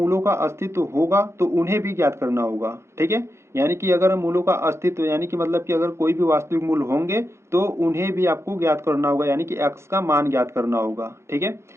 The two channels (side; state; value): left; late; 0.13 ms